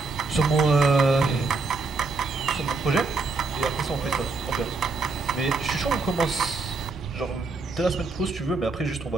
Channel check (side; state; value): left; quieter; 3.9 dB